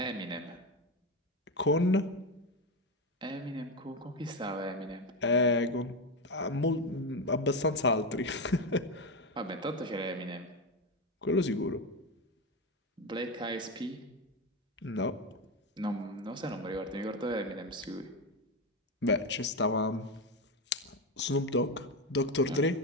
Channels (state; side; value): normal; both; correlation 0.14